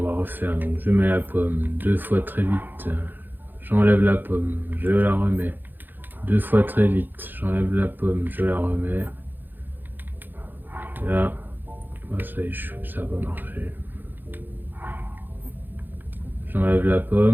va refaire. Donc je mets la pomme 2 fois très vite. J'enlève la pomme, je la remets. 2 fois très vite, j'enlève la pomme, je la remets. Là, ça échoue, ça va marcher. J'enlève la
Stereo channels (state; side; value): late; left; 0.091 ms